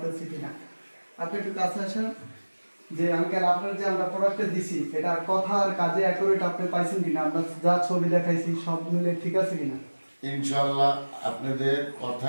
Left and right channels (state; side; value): inverted; both; correlation -1.00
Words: কিনা। আপনি একটু কাছে আসেন। যে আঙ্কেল আপনার যে আমরা প্রোডাক্টটা দিছি এটা কথা আর কাজে অ্যাকুরেট আপনি পাইছেন কিনা, আমরা যা ছবি দেখাইছি সব মিলে ঠিক আছে কিনা? ইনশাল্লাহ আপনাদের কথা